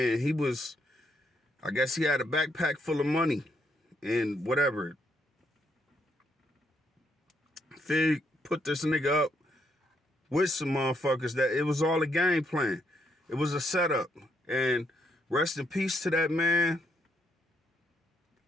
he was, I guess he had a backpack full of money and whatever. Fig put this nigga up with some motherfuckers that it was all a game plan. It was a setup. And rest in peace to that man.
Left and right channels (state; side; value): normal; both; correlation 0.75